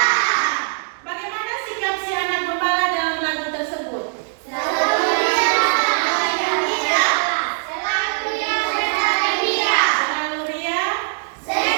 Bagaimana sikap si anak gembala dalam lagu tersebut? Selalu ria.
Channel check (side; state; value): left; silent; digital silence